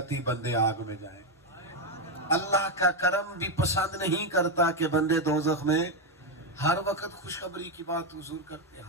بندے آگ میں جائیں، اللہ کا کرم بھی پسند نہیں کرتا کہ بندے دوزخ میں. ہر وقت خوشخبری کی بات حضور کرتے،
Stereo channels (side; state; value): both; normal; correlation 0.05